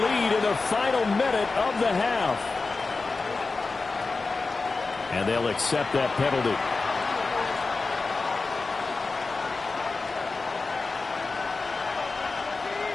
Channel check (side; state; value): right; quieter; 3.9 dB